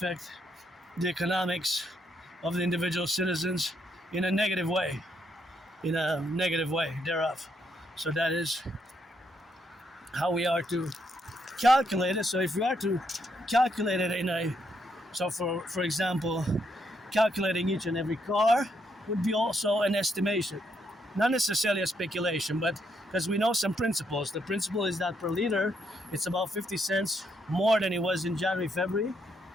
economics of the individual citizens in a negative way thereof. So that is how we are to calculate it. So if we are to calculate it for example, calculating each and every car would be also an estimation, not necessarily a speculation, but because we know some principles. The principle is that per liter, it's about 50 cents more than it was in January, February.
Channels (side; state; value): both; normal; correlation 0.76